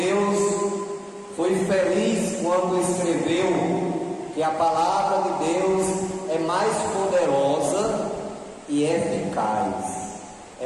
foi feliz quando escreveu que a palavra de Deus é mais poderosa e eficaz,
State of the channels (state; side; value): identical; both; correlation 1.00